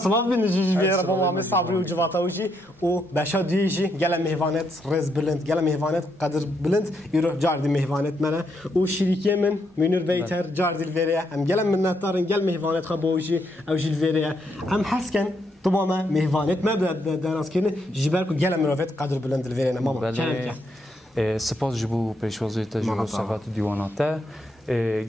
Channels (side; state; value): both; normal; correlation 0.77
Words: بینجی بیار با ما صبری و جواتاوجی و بشا دیجی گل مهوانت رز بلند گل مهوانت قدر بلند ایرو جاردی مهوانت منه و شریکی من منور بیتر جاردیل وریه ام گل منتارن گل مهوانت خبوجی او جیل وریه ام حسکن طبعا مهوانت ما درست کنه جبر کو گل مروفت قدر بلند الویرنا ماما سپاس جبو پیشوازی تجربه صفات دیواناته